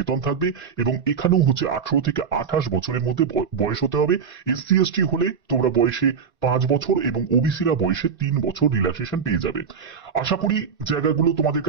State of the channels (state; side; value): quieter; left; 6.3 dB